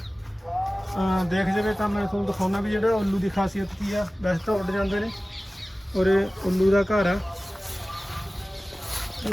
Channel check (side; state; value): both; normal; correlation 0.97